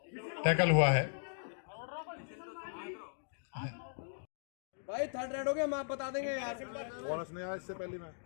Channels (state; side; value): silent; right; digital silence